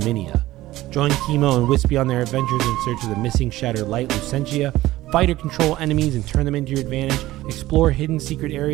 Join Chemo and Wispy on their adventures in search of the missing shattered light Lucentia, fight or control enemies and turn them into your advantage, explore hidden secret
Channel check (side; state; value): left; quieter; 16.5 dB